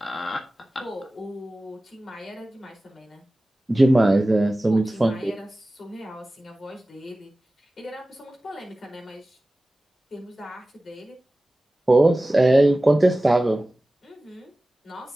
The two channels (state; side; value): normal; both; correlation 0.97